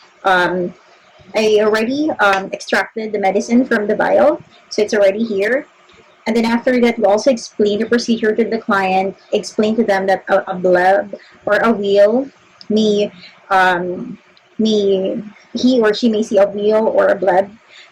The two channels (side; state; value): both; identical; correlation 1.00